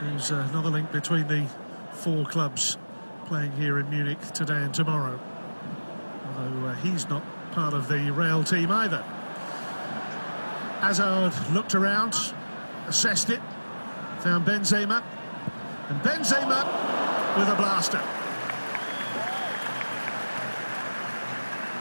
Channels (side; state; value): both; inverted; correlation -1.00